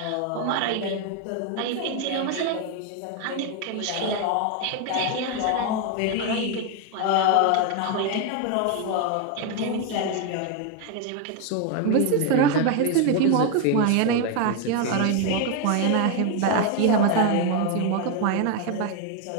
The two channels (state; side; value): different; both; correlation 0.01